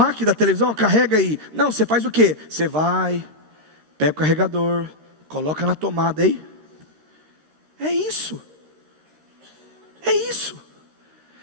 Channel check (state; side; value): late; left; 13 ms